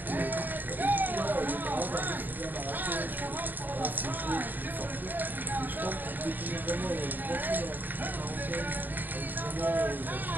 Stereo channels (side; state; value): left; late; 0.089 ms